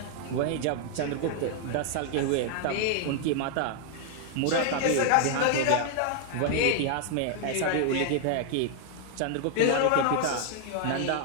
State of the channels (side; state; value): both; different; correlation 0.00